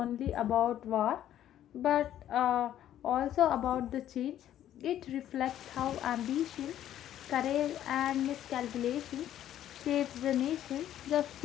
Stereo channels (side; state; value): right; quieter; 11.6 dB